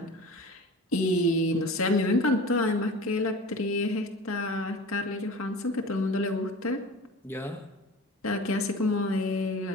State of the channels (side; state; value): both; normal; correlation 0.37